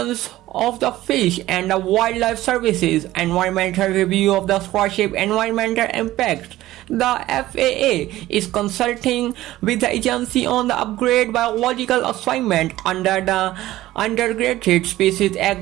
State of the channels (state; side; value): quieter; left; 15.8 dB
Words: of the Fish and Wildlife Services environmental review of the Starship environmental impacts. The FAA is consulting with the agency on the upgrade biological assignment under the Endangered Species